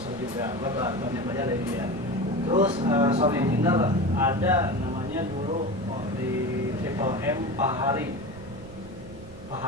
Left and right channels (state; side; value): noise; right; rumble, 18 dB below the sound